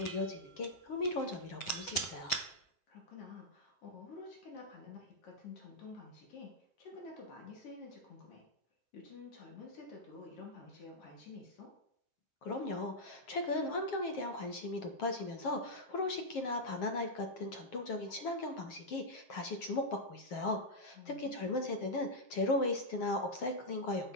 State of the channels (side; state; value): right; late; 7.6 ms